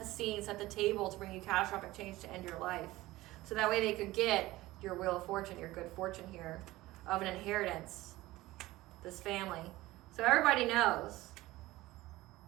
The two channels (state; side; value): quieter; left; 18.1 dB